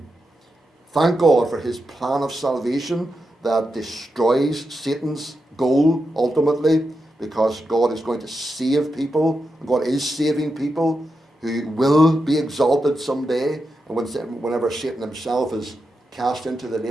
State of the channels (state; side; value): normal; both; correlation 0.87